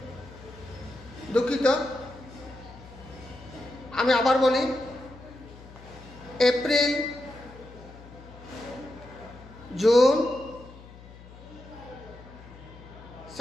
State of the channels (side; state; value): left; noise; hum, 19 dB below the sound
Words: দুঃখিত, আমি আবার বলি, এপ্রিল, জুন,